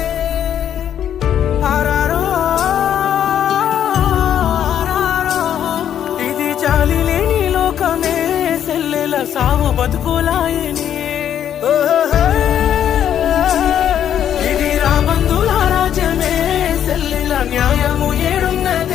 ఆరారో ఆరారో ఇది జాలి లేని లోకమే సెల్లెల సావు బతుకులాయని ఇది రాబందుల రాజ్యమే సెల్లెల న్యాయము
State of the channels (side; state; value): right; quieter; 9.8 dB